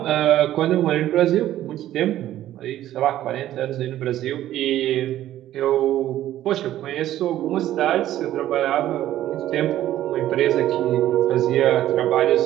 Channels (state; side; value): quieter; left; 13.1 dB